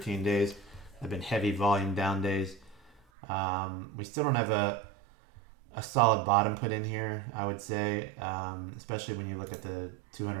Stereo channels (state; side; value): drops out; left; at 3.0 s